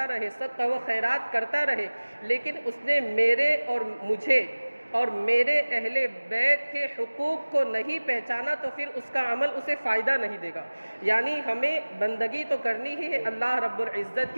رہے، صدقہ و خیرات کرتا رہے، لیکن اس نے میرے اور مجھے اور میرے اہل بیت کے حقوق کو نہیں پہچانا تو پھر اس کا عمل اسے فائدہ نہیں دے گا۔ یعنی ہمیں بندگی تو کرنی ہی ہے اللہ رب العزت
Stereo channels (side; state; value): both; inverted; correlation -1.00